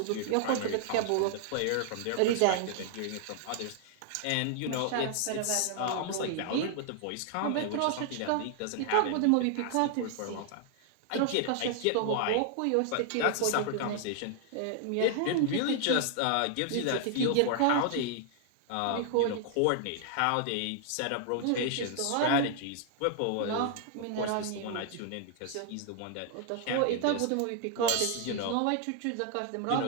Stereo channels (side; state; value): both; different; correlation 0.00